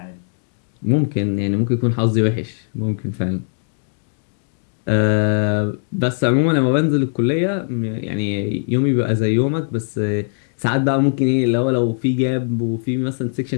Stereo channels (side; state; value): right; silent; digital silence